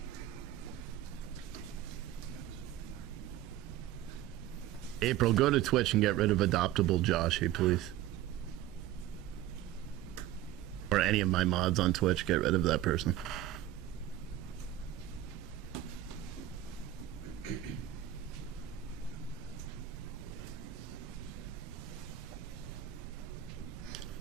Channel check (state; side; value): quieter; left; 12.7 dB